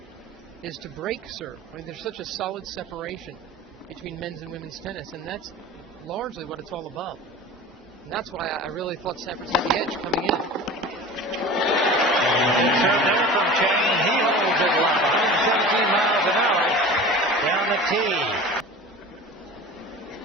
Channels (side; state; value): both; normal; correlation 0.37